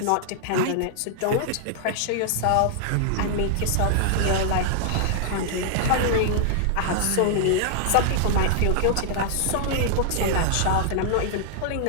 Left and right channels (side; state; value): both; different; correlation -0.01